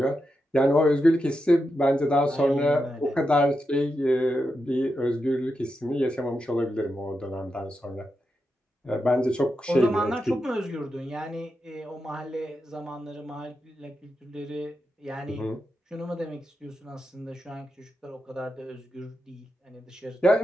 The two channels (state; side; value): normal; both; correlation 0.87